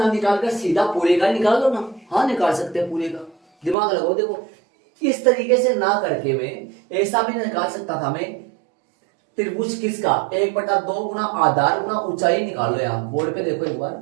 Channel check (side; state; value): left; drops out; at 3.8 s